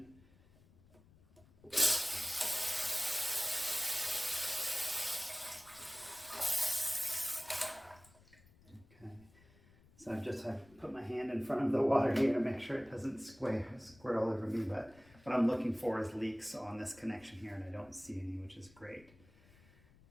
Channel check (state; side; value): noise; left; rumble, 26 dB below the sound